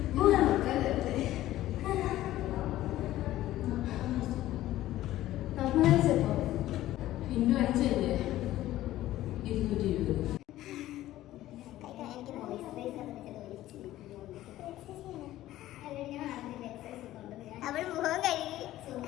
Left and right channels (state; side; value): quieter; right; 14.7 dB